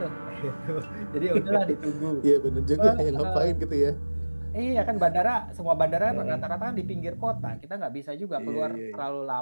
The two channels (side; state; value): both; inverted; correlation -1.00